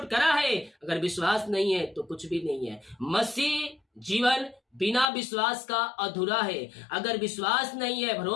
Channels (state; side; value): drops out; right; at 5.1 s